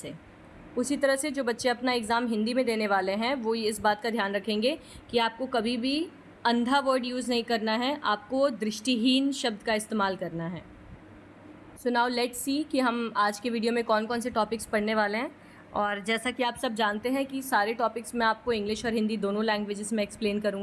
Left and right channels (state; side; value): identical; both; correlation 1.00